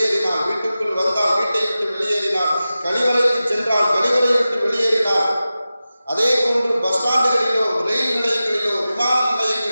வீட்டுக்குள் வந்தால் வீட்டை விட்டு வெளியேறினார், கழிவறைக்கு சென்றால் கழிவறை விட்டு வெளியேறினார். அதே போன்று பஸ் ஸ்டாண்டுகளிலோ ரயில் நிலையங்களிலோ விமான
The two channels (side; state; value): both; inverted; correlation -0.94